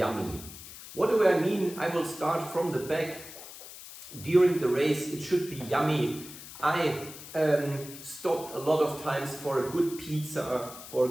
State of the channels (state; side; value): noise; left; hiss, 14 dB below the sound